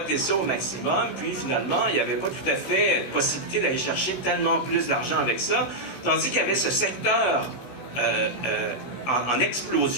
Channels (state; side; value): late; right; 16 ms